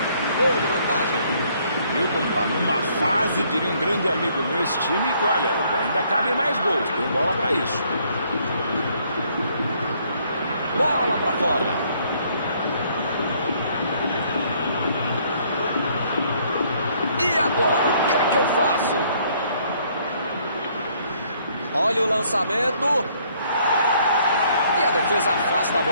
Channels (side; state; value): both; inverted; correlation -0.65